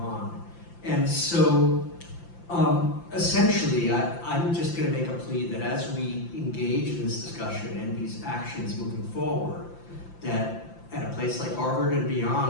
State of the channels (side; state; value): right; late; 5.8 ms